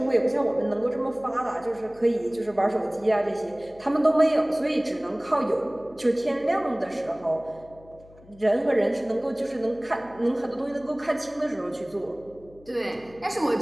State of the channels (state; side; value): noise; left; hum, 24 dB below the sound